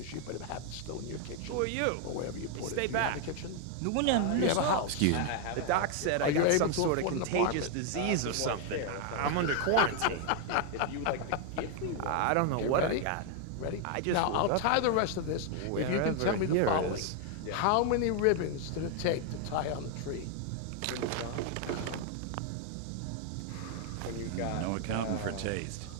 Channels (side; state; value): both; different; correlation 0.00